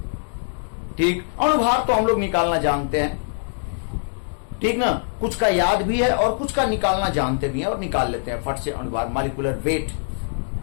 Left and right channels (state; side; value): silent; right; digital silence